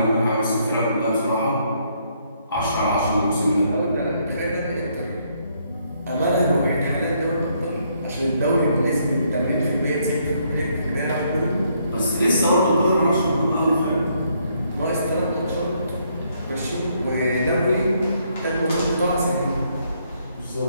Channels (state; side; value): inverted; both; correlation -0.71